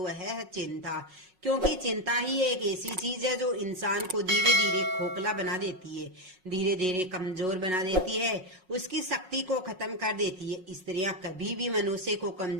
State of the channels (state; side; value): late; left; 5.4 ms